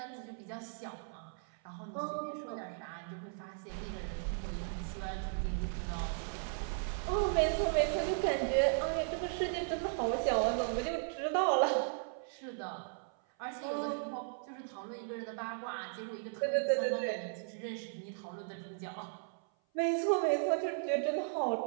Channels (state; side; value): silent; left; 53 dB below the other